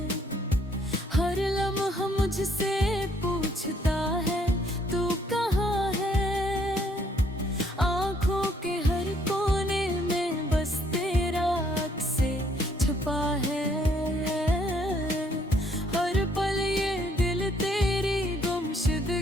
हर लम्हा मुझसे पूछता है तू कहाँ है। आँखों के हर कोने में बस तेरा अक्स छुपा है। हर पल ये दिल तेरी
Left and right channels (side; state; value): both; normal; correlation 0.67